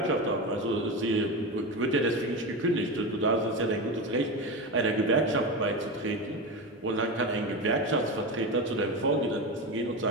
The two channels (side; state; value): both; normal; correlation 0.20